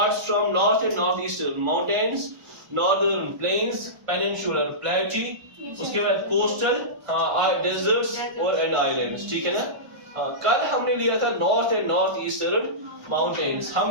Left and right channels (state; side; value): late; left; 1.5 ms